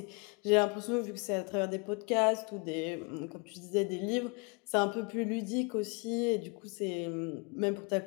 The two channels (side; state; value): right; quieter; 32.2 dB